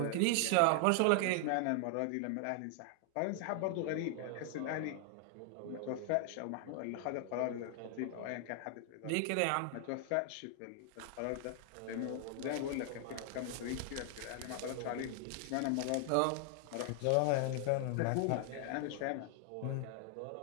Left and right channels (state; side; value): different; both; correlation 0.00